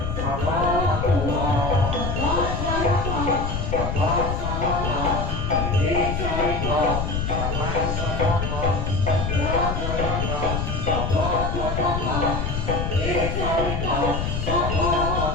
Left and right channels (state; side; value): noise; left; rumble, 2 dB below the sound